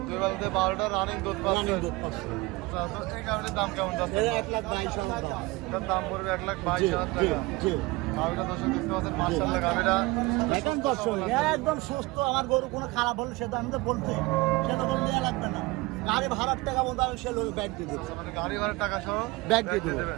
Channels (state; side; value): quieter; left; 22.6 dB